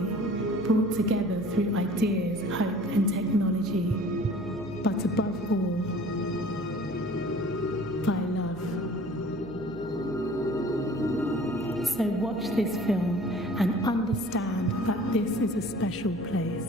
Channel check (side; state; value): left; noise; hum, 19 dB below the sound